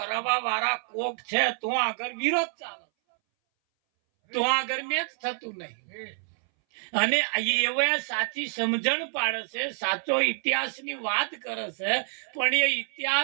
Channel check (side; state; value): left; silent; 60 dB below the other